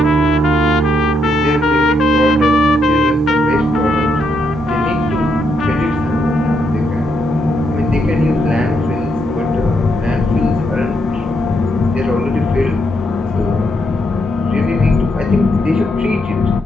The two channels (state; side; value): normal; both; correlation 0.78